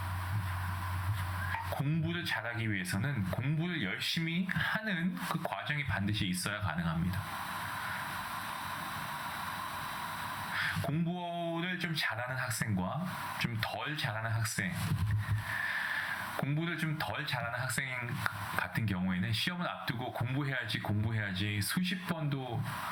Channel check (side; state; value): both; identical; correlation 1.00